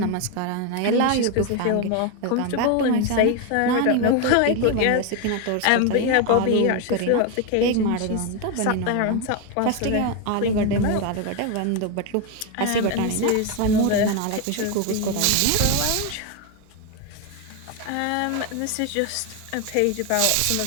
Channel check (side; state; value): both; different; correlation 0.02